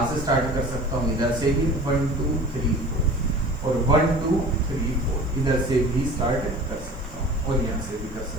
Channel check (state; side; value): noise; left; hiss, 28 dB below the sound